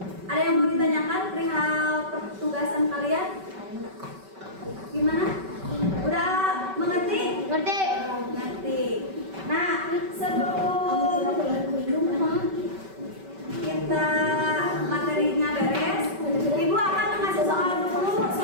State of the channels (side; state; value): left; late; 5.2 ms